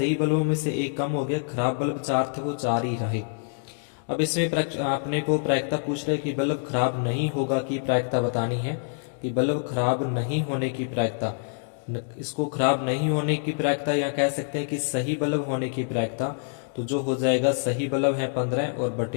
बल्बों में से एक कम हो गया, खराब बल्ब 4 थे वो 4 ही रहे। अब इसमें अपने को प्रायिकता पूछ रहे कि बल्ब खराब नहीं होगा की प्रायिकता बतानी है, कि बल्ब खराब नहीं होने की प्रायिकता। इसको खराब नहीं होने की प्रायिकता या कह सकते हैं कि सही बल्ब होने की प्रायिकता, तो जो हो जाएगा सही बल्ब है 15 और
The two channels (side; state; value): right; silent; 61 dB below the other